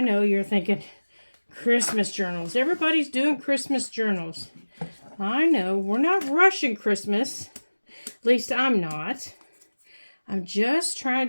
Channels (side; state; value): both; inverted; correlation -1.00